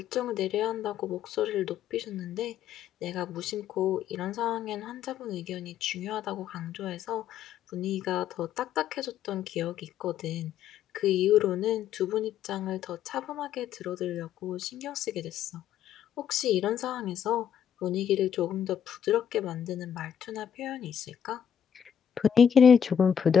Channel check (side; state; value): right; quieter; 8.6 dB